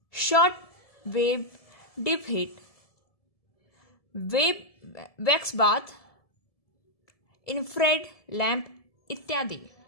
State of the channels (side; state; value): right; late; 1.7 ms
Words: short wave deep heat, web wax bath, infrared lamp इत्यादि।